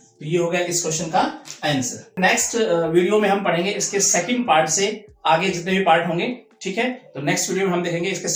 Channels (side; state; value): both; identical; correlation 1.00